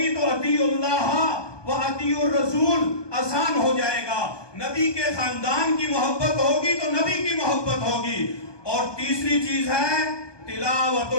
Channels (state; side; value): late; right; 1.2 ms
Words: تو اطیع اللہ و اطیع الرسول آسان ہو جائے گا، نبی کے خاندان کی محبت ہوگی تو نبی کی محبت ہوگی، اور تیسری چیز ہے تلاوت